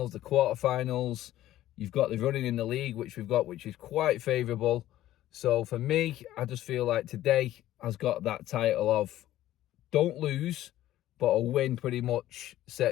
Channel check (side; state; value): right; quieter; 14.0 dB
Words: the quarter-finals. You've got the running in the league, which we've got, which is quite favourable. So for me, I just feel like today has got that title of don't lose, but a win pretty much